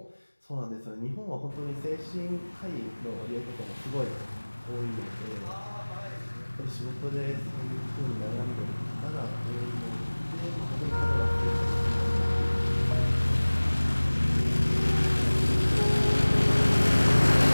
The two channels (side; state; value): both; inverted; correlation -1.00